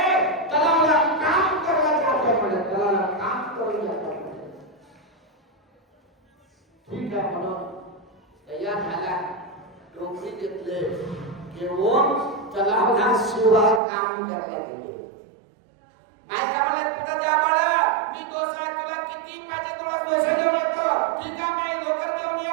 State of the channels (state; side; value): drops out; left; at 13.8 s